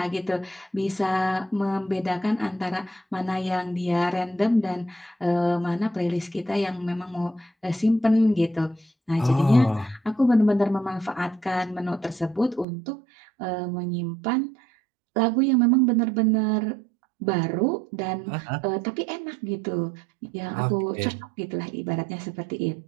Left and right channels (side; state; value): left; drops out; at 12.7 s